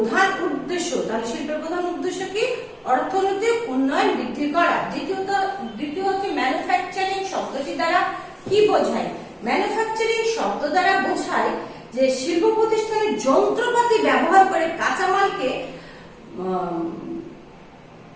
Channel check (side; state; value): both; identical; correlation 1.00